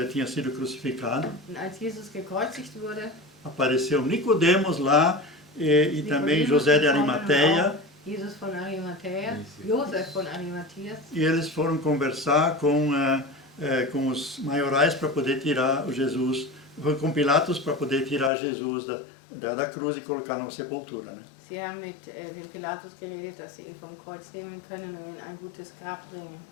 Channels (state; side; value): drops out; right; at 18.3 s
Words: tinha sido crucificado, Und als Jesus gekreuzigt wurde, apareceu Nicodemos lá e também José de Arimateia, Jesus von Arimathea, Josef von Arimatheas, e eles foram conversar com os maiorais para poder tirar o Jesus, com Pilatos para poder tirar Jesus da cruz e colocar numa sepultura, né? sie haben mit dem Pilatus geredet, dass sie ihn vom Kreuz nehmen können und in ein gutes Grab bringen.